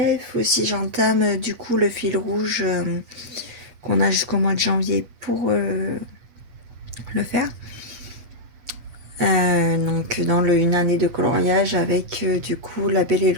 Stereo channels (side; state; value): left; late; 8.5 ms